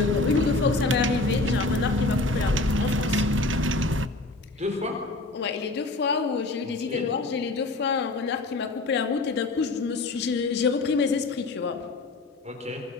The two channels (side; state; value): right; quieter; 3.1 dB